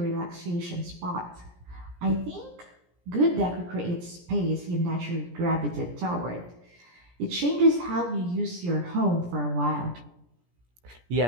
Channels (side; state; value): left; late; 17 ms